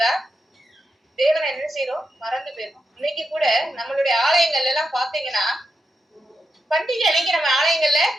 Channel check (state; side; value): normal; both; correlation 0.86